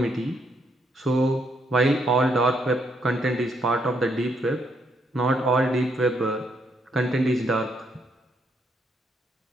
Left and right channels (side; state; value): both; normal; correlation 0.74